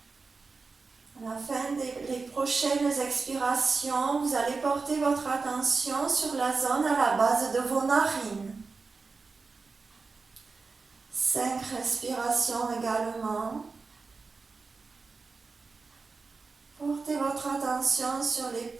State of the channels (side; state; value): left; quieter; 4.3 dB